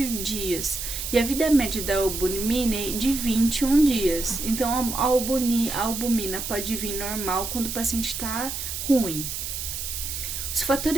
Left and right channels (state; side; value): noise; right; hiss, 5 dB below the sound